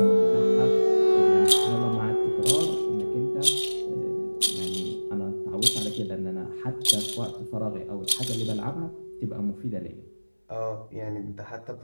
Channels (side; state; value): both; inverted; correlation -1.00